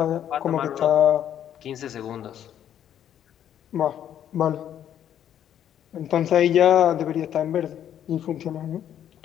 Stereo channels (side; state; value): right; quieter; 10.2 dB